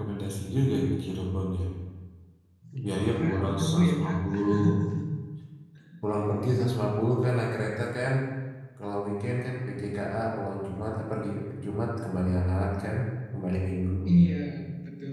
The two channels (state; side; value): identical; both; correlation 1.00